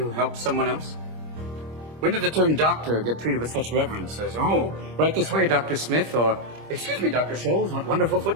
helps someone else? When did the term doctor get treated with such reverence as, oh, right this way, Dr. Smith, or, excuse me, Dr. Scholes, what wonderful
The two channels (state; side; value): late; left; 26 ms